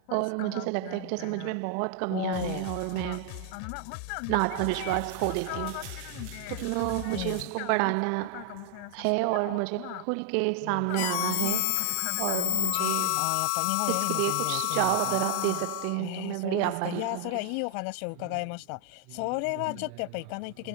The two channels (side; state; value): both; different; correlation 0.00